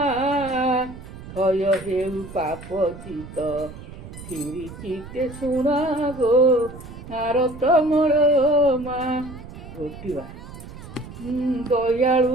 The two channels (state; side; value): noise; right; rumble, 14 dB below the sound